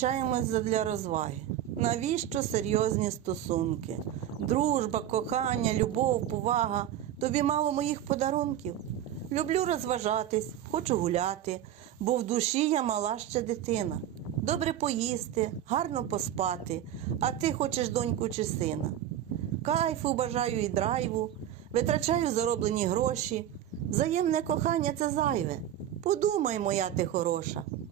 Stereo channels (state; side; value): quieter; left; 11.3 dB